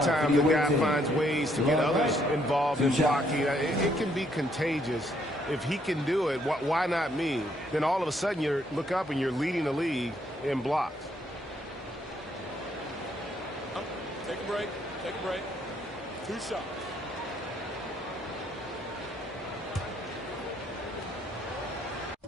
times the guy finds ways to get others involved in blocking. It can be contagious. If he can do it, why not me? Then all of a sudden you look up and you're leading the league in blocks. Take a break. Take a break. 2 shots.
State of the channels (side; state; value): both; normal; correlation 0.70